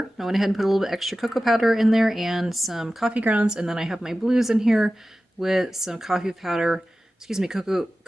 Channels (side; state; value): both; normal; correlation 0.95